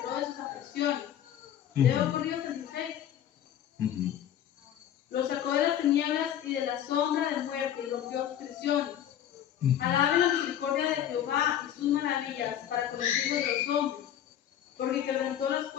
de sus aflicciones. Leo por Dios el 16. Los sacó de las tinieblas y de la sombra de muerte y rompió sus prisiones. Alaben la misericordia de Jehová y sus maravillas para con los hijos de los hombres, porque quebrantó las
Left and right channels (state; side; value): quieter; right; 10.6 dB